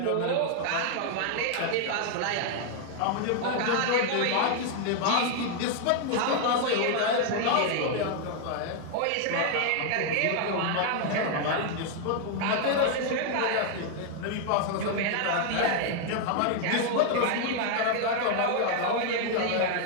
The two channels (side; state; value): both; different; correlation 0.00